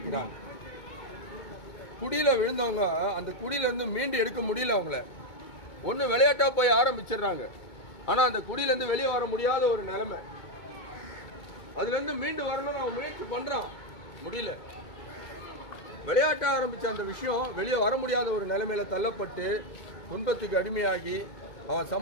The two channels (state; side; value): late; right; 2.2 ms